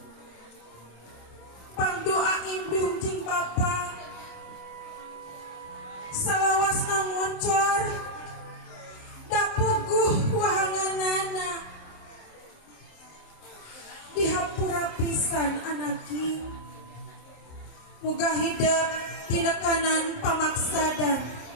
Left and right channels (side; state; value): right; late; 26 ms